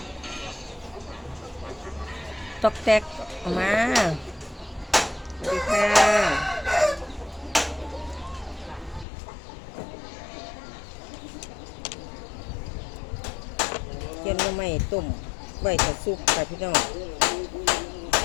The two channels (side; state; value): right; drops out; at 9.1 s